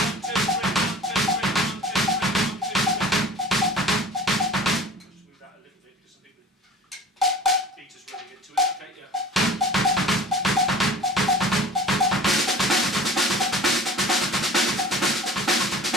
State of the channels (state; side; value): normal; both; correlation 0.41